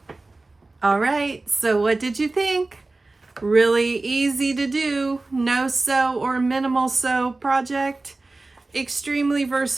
All right, so what did you think? Really easy to do, no sew or minimal sew project. Extremely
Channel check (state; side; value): quieter; left; 3.2 dB